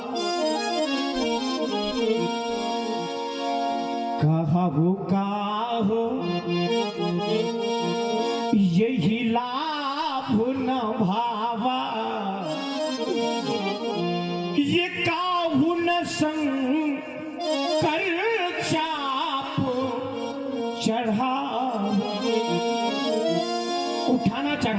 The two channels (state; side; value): identical; both; correlation 1.00